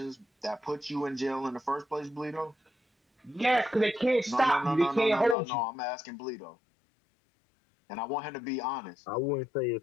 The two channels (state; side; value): drops out; right; at 5.4 s